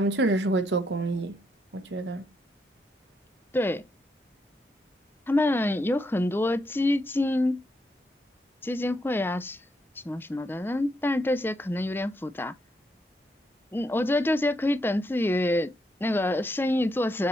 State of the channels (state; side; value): normal; both; correlation 0.79